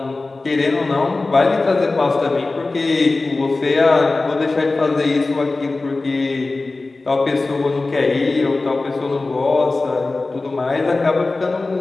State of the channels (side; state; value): right; quieter; 3.4 dB